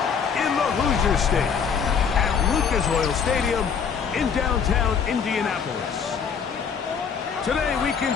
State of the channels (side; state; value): right; quieter; 6.7 dB